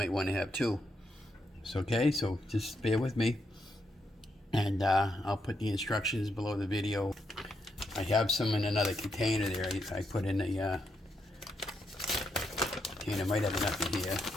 want to have 2. It's okay, so just bear with me. And I'll put the instructions below the video. I have some in another container there. I put in a container, might have enough in here.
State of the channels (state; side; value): normal; both; correlation 0.80